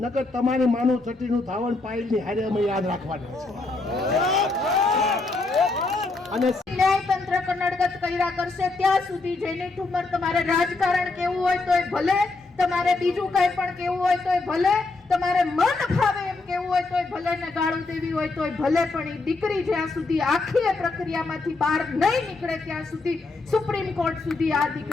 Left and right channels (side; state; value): right; quieter; 3.5 dB